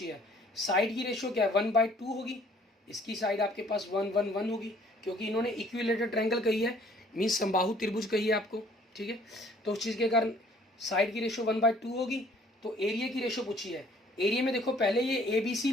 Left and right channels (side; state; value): both; normal; correlation 0.58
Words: है, साइड की रेशियो क्या है 1/2 होगी, इसकी साइड आपके पास 1 1 1 होगी, क्योंकि इन्होंने इक्विलेटरल ट्रायंगल कही है, मीन्स समबाहु त्रिभुज कही है आपको, ठीक है। तो उस चीज़ के कारण साइड की रेशियो 1/2 होगी। तो एरिया की रेशियो पूछी है, एरिया में देखो पहले ये ABC